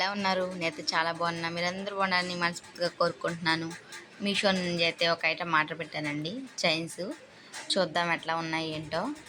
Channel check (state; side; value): identical; both; correlation 1.00